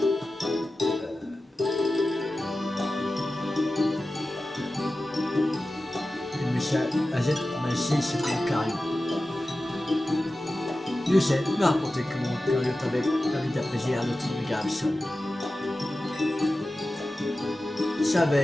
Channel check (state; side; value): normal; both; correlation 0.94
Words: Monsieur AZ m'a laissé ce Lucario. Je sais, il m'a raconté que mon Lucario t'avait permis d'apaiser un autre méga Absol. Ça